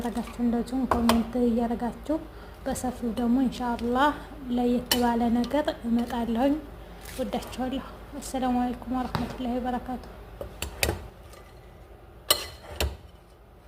እንደዚሁም ኮሜንት እያረጋችሁ በሰፊው ደግሞ ኢንሻአላህ ለየት ባለ ነገር እመጣለሁኝ። ወዳችኋለሁ። አሰላሙ አለይኩም ወራህመቱላሂ ወበረካቱ።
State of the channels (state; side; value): identical; both; correlation 1.00